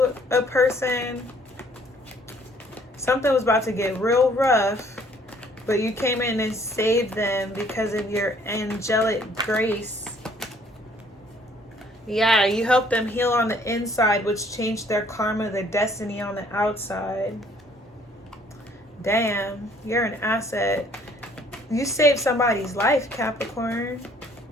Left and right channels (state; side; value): normal; both; correlation 0.60